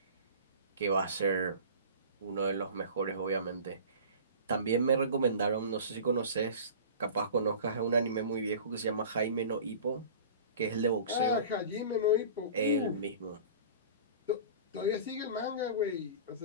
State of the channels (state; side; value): inverted; both; correlation -0.39